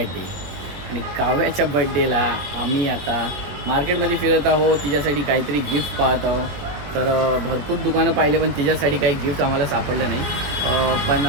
आणि काव्याच्या बर्थडेला आम्ही आता मार्केटमध्ये फिरत आहोत. तिच्यासाठी काहीतरी गिफ्ट पाहत आहोत. तर भरपूर दुकानं पाहिले पण तिच्यासाठी काही गिफ्ट आम्हाला सापडलं नाही. पण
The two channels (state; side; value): late; left; 21 ms